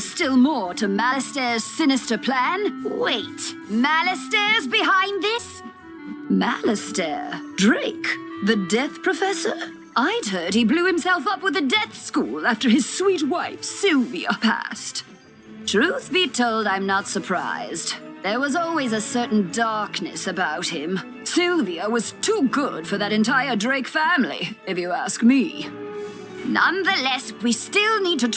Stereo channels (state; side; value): identical; both; correlation 1.00